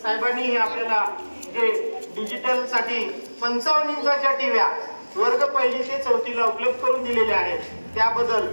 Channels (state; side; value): inverted; both; correlation -1.00